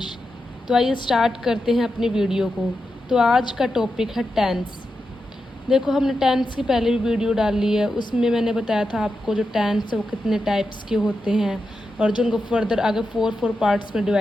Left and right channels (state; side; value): normal; both; correlation 0.88